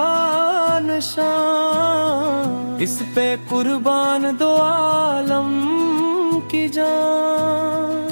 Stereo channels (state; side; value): inverted; both; correlation -1.00